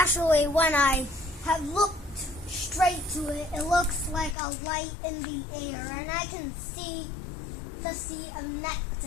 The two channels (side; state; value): right; drops out; at 4.4 s